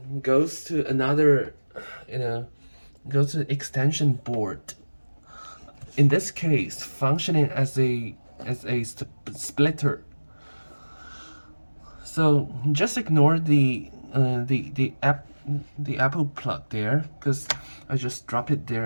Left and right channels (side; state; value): both; inverted; correlation -1.00